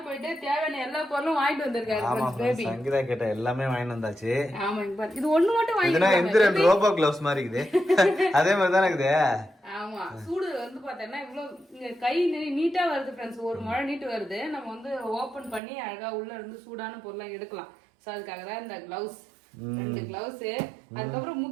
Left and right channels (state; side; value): drops out; left; at 15.6 s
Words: போயிட்டு தேவையான எல்லா பொருளும் வாங்கிட்டு வந்திருக்காரு பேபி. சங்கீதா கேட்ட எல்லாமே வாங்கிட்டு வந்தாச்சு. ஆமா இது ஒண்ணு மட்டும் வாங்கிட்டு ரோபோ கிளவுஸ் மாதிரி இருக்குது. அதே மாதிரி தான் இருக்குது. ஆமா சூடு வந்து பாத்தீங்கன்னா இவ்வளவு கை நீட்டா வருது ஃப்ரெண்ட்ஸ். ஒரு மழை நீட்டு வருது. நம்ம வந்து ஓபன் பண்ணி அழகா உள்ள இருந்து சூடான பொருளை எடுக்கலாம். சோ அதுக்காக தான் இந்த கிளவுஸ். 2 கிளவுஸ். அதுக்கப்புறம்